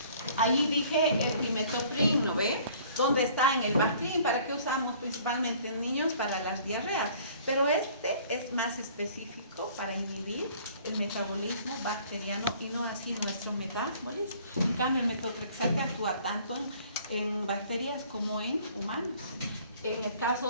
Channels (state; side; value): inverted; both; correlation -0.54